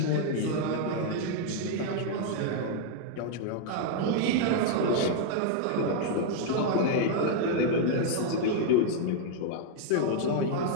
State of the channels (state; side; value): different; both; correlation 0.00